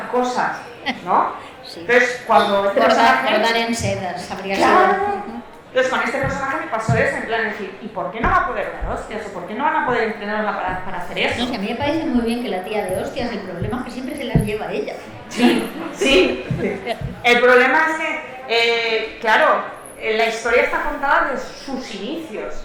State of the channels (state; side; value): identical; both; correlation 1.00